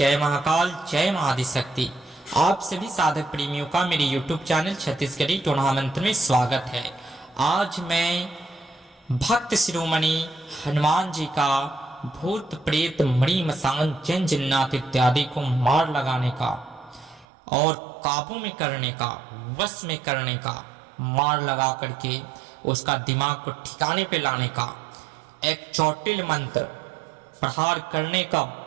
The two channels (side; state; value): left; drops out; at 17.2 s